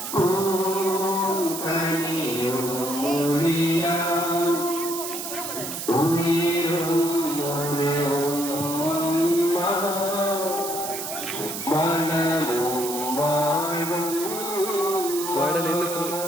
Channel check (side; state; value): right; noise; hiss, 6 dB below the sound